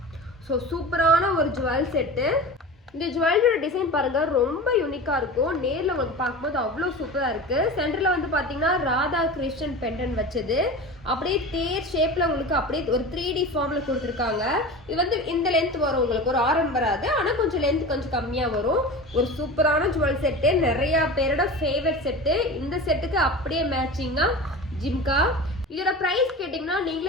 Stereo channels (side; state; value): both; normal; correlation 0.32